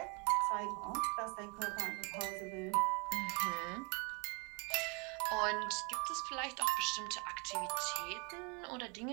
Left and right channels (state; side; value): quieter; left; 32.4 dB